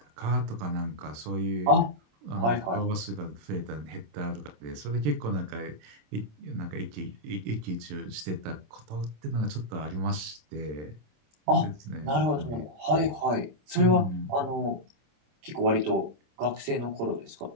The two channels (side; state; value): left; late; 27 ms